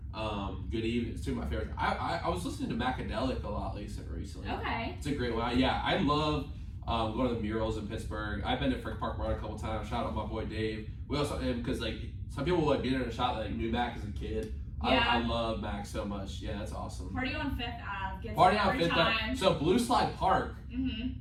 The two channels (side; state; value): both; identical; correlation 1.00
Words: Good Evening. It's two of my favorites. I was listening to Macadelic a lot recently. Okay. It's a great one. Yeah, I love going to the murals in Pittsburgh. I've been to Frick Park Mart a couple times. Shout out my boy Dave. We also because like some people would be there and shout like knew Mac as a kid. I love Mac so much. Yeah, that's awesome. Party on Fifth Ave gets Party it on every Fifth time. Ave. So Blue Slide Park